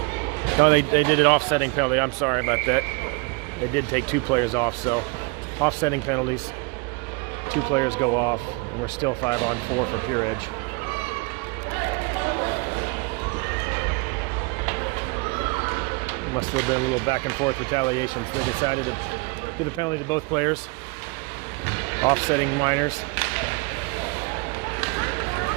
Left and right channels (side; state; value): left; quieter; 29.0 dB